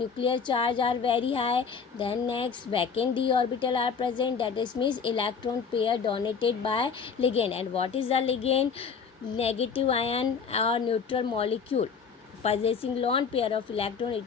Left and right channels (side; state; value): right; quieter; 5.9 dB